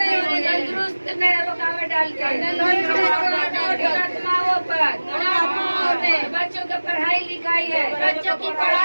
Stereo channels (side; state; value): both; inverted; correlation -1.00